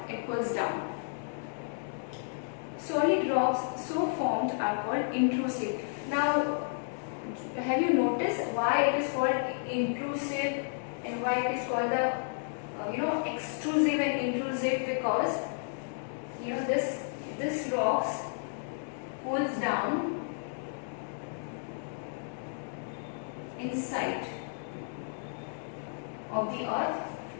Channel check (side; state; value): right; silent; digital silence